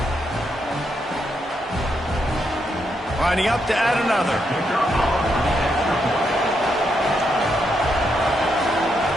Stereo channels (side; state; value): both; normal; correlation 0.80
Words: Lining up to add another.